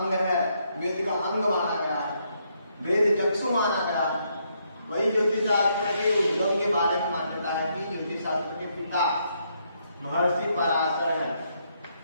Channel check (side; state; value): both; inverted; correlation -0.75